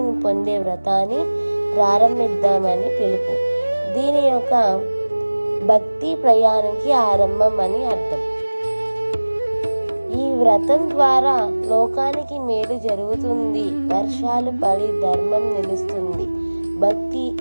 పొందే వ్రతాన్ని ప్రారంభిద్దామని పిలుపు. దీని యొక్క భక్తి ప్రయాణానికి ఆరంభం అని అర్థం. ఈ వ్రతం ద్వారా లోకానికి మేలు జరుగుతుంది, వర్షాలు పడి ధర్మం నిలుస్తుంది, భక్తి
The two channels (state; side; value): inverted; both; correlation -1.00